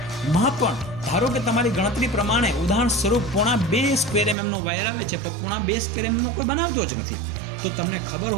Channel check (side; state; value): left; drops out; at 4.4 s